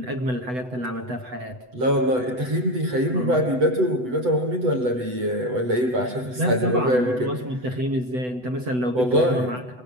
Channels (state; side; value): late; left; 8.0 ms